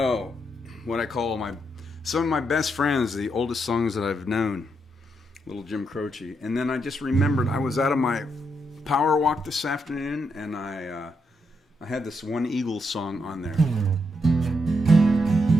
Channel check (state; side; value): normal; both; correlation 0.80